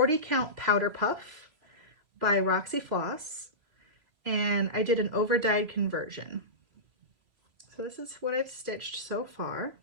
count Powder Puff by Roxy Floss, and I did an over-dyed conversion. So this is what I've stitched so far.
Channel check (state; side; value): late; left; 3.0 ms